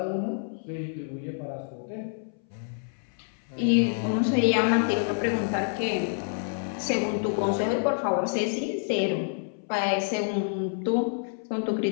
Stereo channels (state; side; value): silent; right; 60 dB below the other